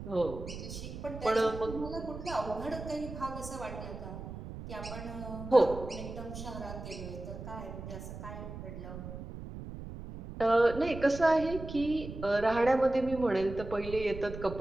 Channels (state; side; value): noise; right; rumble, 10 dB below the sound